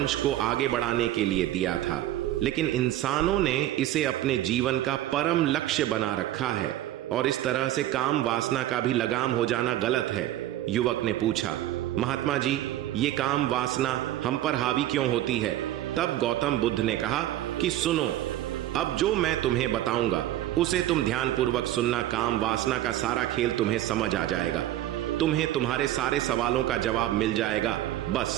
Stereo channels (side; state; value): left; quieter; 13.8 dB